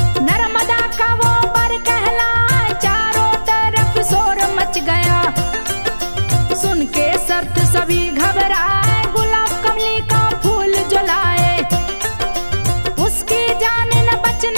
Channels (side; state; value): both; inverted; correlation -1.00